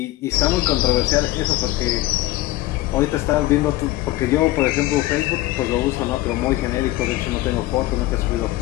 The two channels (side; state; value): right; quieter; 16.9 dB